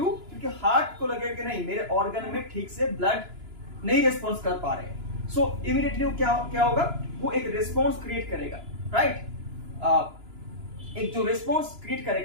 क्योंकि हार्ट को लगेगा कि नहीं, मेरे ऑर्गन में ठीक से ब्लड नहीं रिस्पॉन्स कर पा रहे हैं। सो इमीडिएटली वो क्या होगा, वो एक रिस्पॉन्स क्रिएट करेगा, राइट। एक जो रिस्पॉन्स क्रिएट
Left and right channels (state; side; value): late; left; 2.9 ms